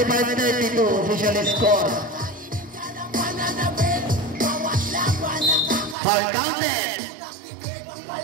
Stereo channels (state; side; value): drops out; left; at 6.0 s